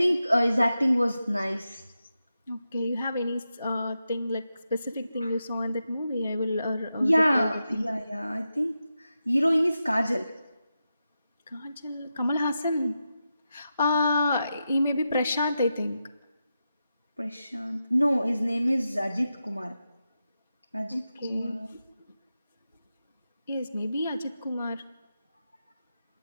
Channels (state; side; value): inverted; both; correlation -0.89